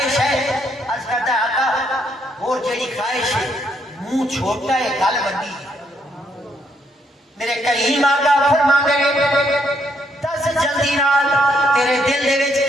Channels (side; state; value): both; normal; correlation 0.73